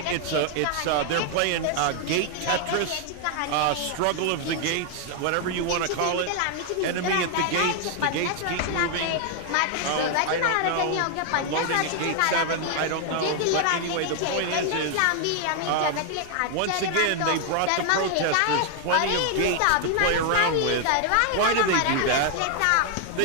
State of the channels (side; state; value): both; different; correlation 0.00